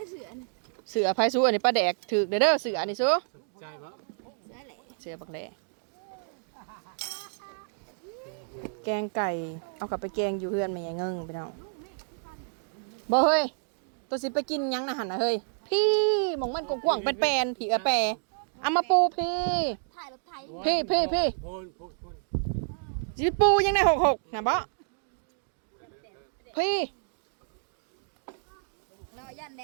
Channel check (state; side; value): silent; left; digital silence